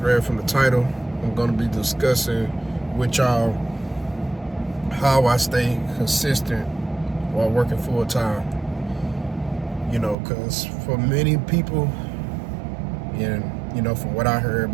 read from the title, I'm gonna be discussing with y'all how I stay consistent while working full time. You know, cause for many people, and from what I heard,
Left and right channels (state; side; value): drops out; left; at 10.2 s